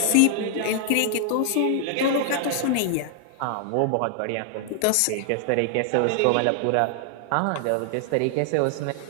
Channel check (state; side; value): different; both; correlation 0.00